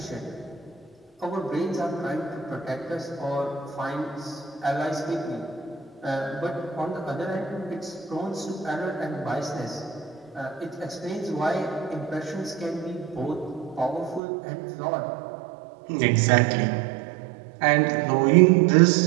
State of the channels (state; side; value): drops out; left; at 14.2 s